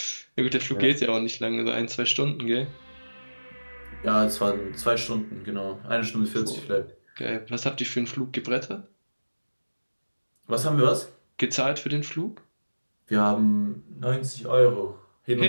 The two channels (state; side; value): inverted; both; correlation -1.00